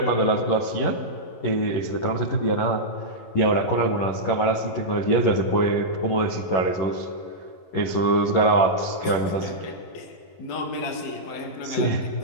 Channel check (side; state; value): right; late; 11 ms